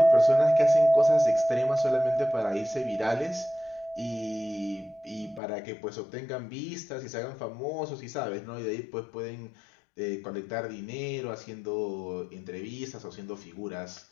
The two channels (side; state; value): right; drops out; at 5.4 s